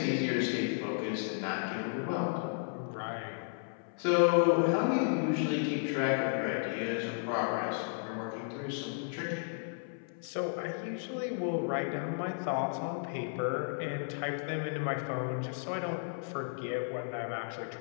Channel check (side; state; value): right; silent; 55 dB below the other